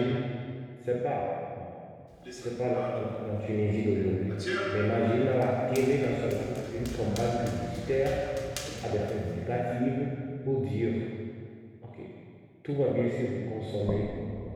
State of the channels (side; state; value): both; identical; correlation 1.00